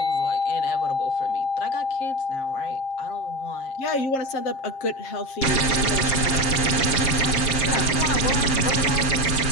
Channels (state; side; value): late; right; 7.5 ms